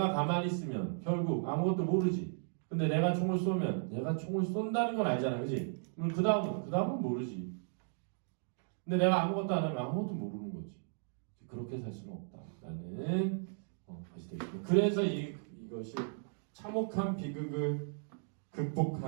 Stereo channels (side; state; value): left; silent; digital silence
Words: 가만히 있으면 결국 아무것도 모르지. 근데 내가 총을 쏘면 내가 총을 쏜다는 건 알잖아. 그지? 그럼 그 다음은 모르지. 근데 내가 아무것도 안 하면 아무것도 모르는 거지. 그렇게 살 수는 없다. 라는 것이 되겠습니다. 그래서 이것이 참혹한 비극을